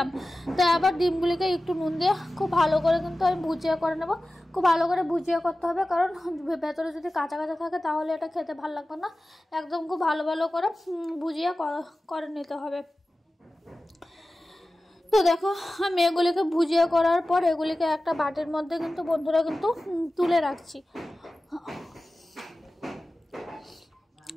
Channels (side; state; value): both; normal; correlation 0.95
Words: তো আবার ডিমগুলিকে একটু নুন দিয়ে খুব ভালো করে কিন্তু আমি ভুজিয়া করে নেবো। খুব ভালো করে ভুজিয়া করতে হবে, কারণ ভেতরে যদি কাঁচা কাঁচা থাকে তাহলে এটা খেতে ভালো লাগবে না। একদম খুব ভালো করে ভুজিয়া করে নিতে হবে। তো দেখো, আমি এগুলিকে ভুজিয়া করার পর এগুলিকে একটা বাটির মধ্যে কিন্তু বন্ধুরা কিন্তু তুলে রাখছি।